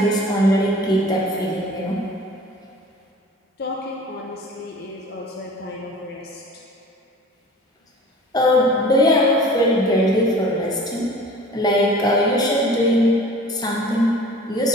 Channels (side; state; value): both; normal; correlation 0.43